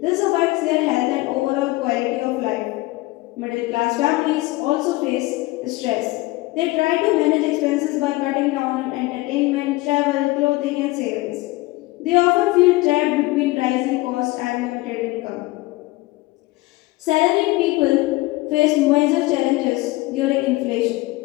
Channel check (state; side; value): quieter; right; 20.3 dB